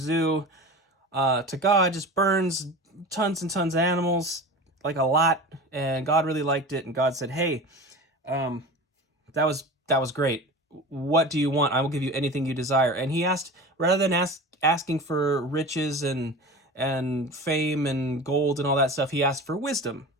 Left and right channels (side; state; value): both; normal; correlation 0.33